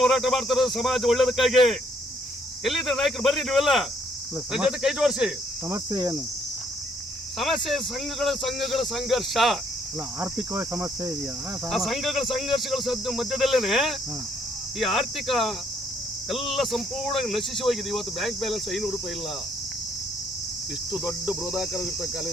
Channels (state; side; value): normal; both; correlation 0.68